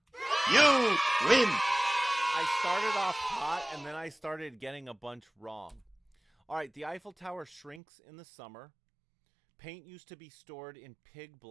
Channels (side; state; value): left; drops out; at 7.8 s